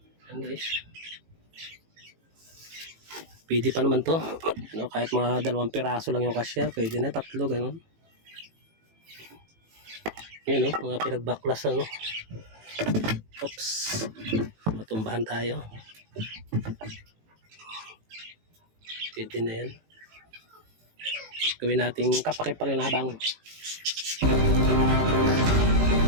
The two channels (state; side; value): late; left; 18 ms